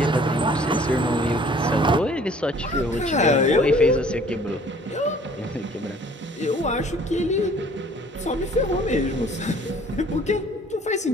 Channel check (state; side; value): normal; both; correlation 0.54